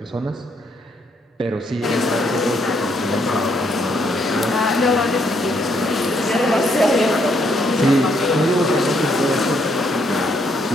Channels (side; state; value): both; normal; correlation 0.72